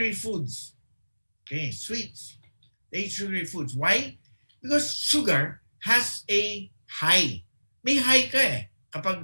foods. Okay, sweets. They eat sugary foods. Why? Because sugar has a high. May high ka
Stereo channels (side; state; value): both; inverted; correlation -1.00